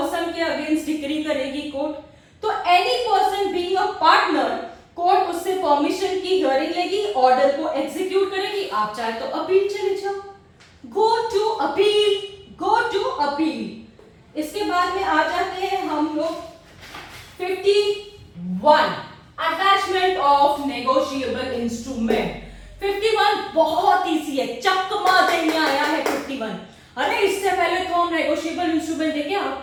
के अगेंस्ट डिक्री करेगी कोर्ट। तो any person being a partner, court उससे परमिशन की हियरिंग लेगी, ऑर्डर को एग्जीक्यूट करेगी। आप चाहे तो अपील चले जाओ, go to appeal, go to appeal. इसके बाद में आ जाते हैं हम लोग 51 अटैचमेंट ऑफ नेगोशिएबल इंस्ट्रूमेंट। 51 बहुत इजी है, चकमा देने आया है 51। अरे इससे पहले तो हम नेगोशिएबल इंस्ट्रूमेंट देखे,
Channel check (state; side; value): identical; both; correlation 1.00